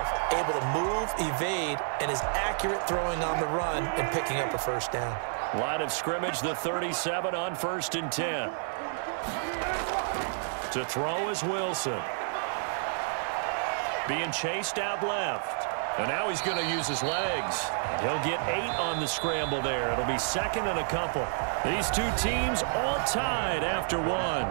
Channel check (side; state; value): left; silent; digital silence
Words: Able to move, evade, and is accurate throwing on the run and picking up a first down. Line of scrimmage, the 37 on 1st and 10. To throw is Wilson. Being chased out left. And now he's going to use his legs. He'll get 8 on the scramble there. It'll be 2nd and a couple. These 2 teams all tied after 1. 7-7.